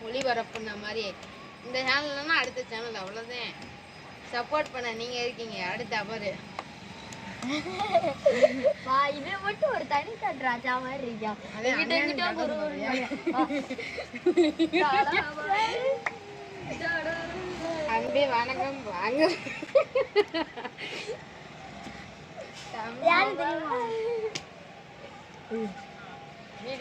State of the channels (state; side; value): identical; both; correlation 1.00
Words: ஒளிபரப்புன மாதிரி இந்த சேனல்னா அடுத்த சேனல். அவ்வளோதான். சப்போர்ட் பண்ண நீங்க இருக்கீங்க. அடுத்த அவரு இது மட்டும் ஒரு தனி ராஜா மாதிரி இருக்கா. அன்பே வணக்கம் வாங்க.